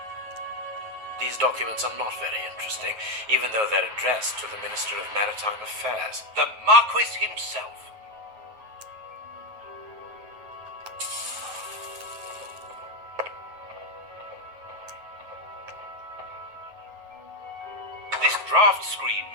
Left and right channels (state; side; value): late; left; 9.4 ms